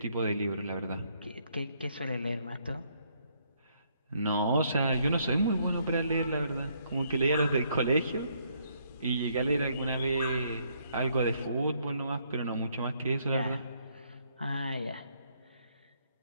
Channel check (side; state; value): both; inverted; correlation -0.70